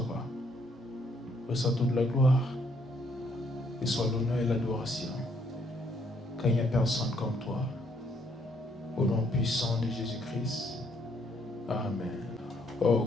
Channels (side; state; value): both; normal; correlation 0.69